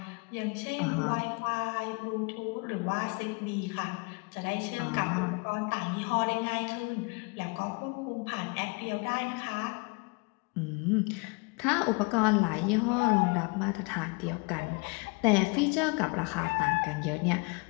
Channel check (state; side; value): quieter; right; 30.8 dB